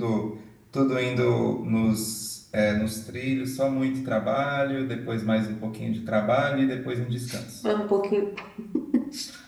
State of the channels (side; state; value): both; identical; correlation 1.00